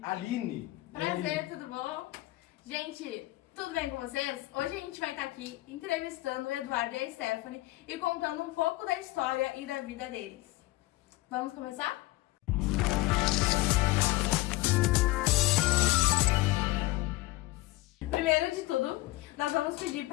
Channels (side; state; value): right; quieter; 19.1 dB